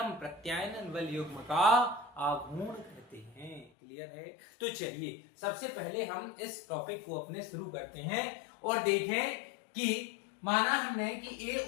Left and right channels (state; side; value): drops out; right; at 3.7 s